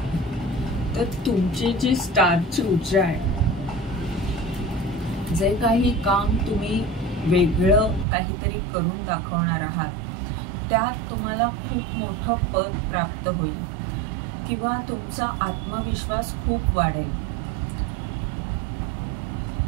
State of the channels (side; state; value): left; drops out; at 8.1 s